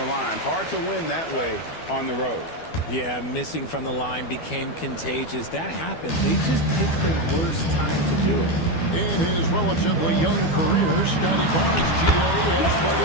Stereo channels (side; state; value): right; late; 12 ms